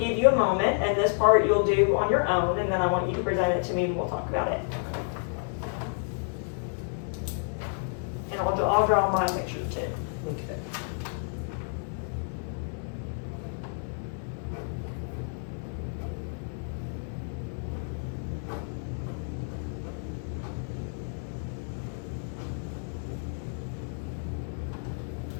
you a moment, and this part you'll do on your own, and then I want you to present it to me and we'll talk about it. And I'll draw my picture too. Okay.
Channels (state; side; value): silent; right; 58 dB below the other